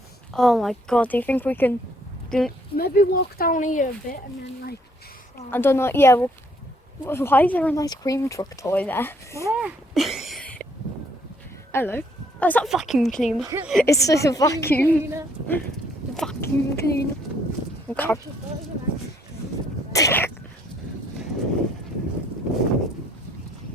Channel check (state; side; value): normal; both; correlation 0.66